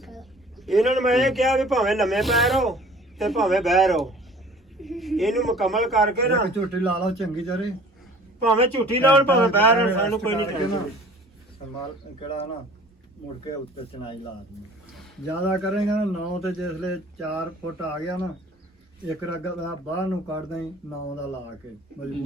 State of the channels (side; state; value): both; normal; correlation 0.49